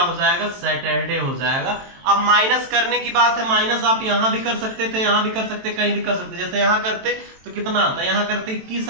हो जाएगा, सैटरडे हो जाएगा। अब माइनस करने की बात है, माइनस आप यहां भी कर सकते थे, यहां भी कर सकते, कहीं भी कर सकते। जैसे यहां करते तो कितना आता, यहां करते 21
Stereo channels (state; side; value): late; left; 23 ms